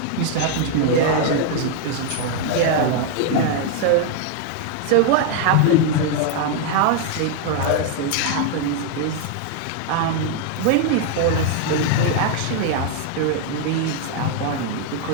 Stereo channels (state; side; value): different; both; correlation 0.00